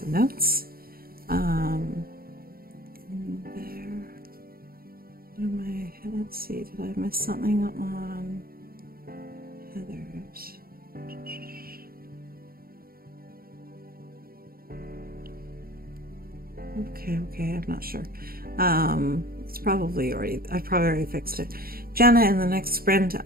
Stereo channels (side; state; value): left; late; 0.43 ms